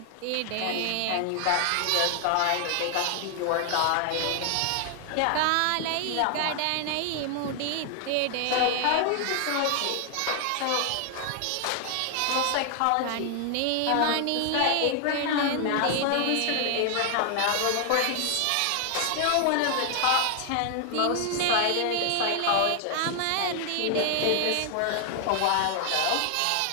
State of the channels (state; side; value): different; both; correlation 0.00